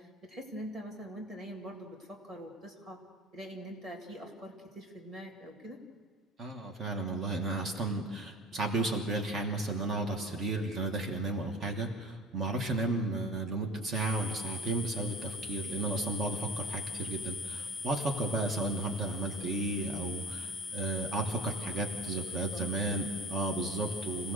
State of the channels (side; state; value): both; normal; correlation 0.39